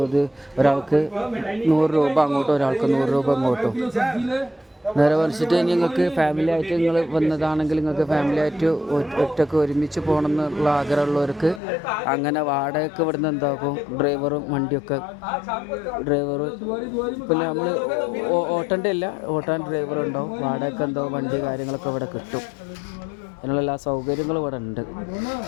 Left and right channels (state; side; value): drops out; right; at 11.6 s